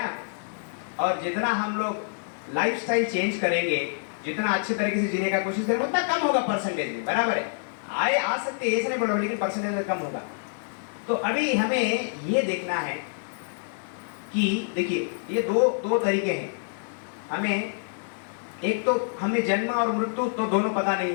और जितना हम लोग लाइफस्टाइल चेंज करेंगे, जितना अच्छे तरीके से जीने का कोशिश करेंगे, उतना कम होगा परसेंटेज में, बराबर है? आ सकते हैं, ऐसे नहीं बोलो, लेकिन परसेंटेज में कम होगा। तो अभी हमें ये देखना है कि देखिए, ये दो तरीके हैं। हमें एक तो हमें जन्म और मृत्यु तो दोनों पता नहीं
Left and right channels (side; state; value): right; silent; digital silence